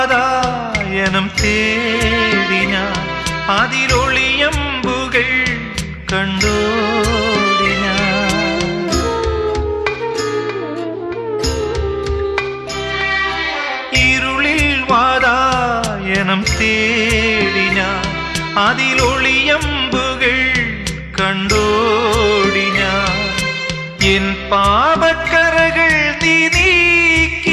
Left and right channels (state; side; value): identical; both; correlation 1.00